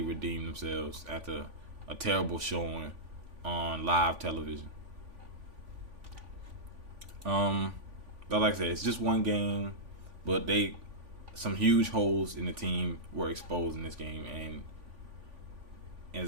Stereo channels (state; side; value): late; left; 3.5 ms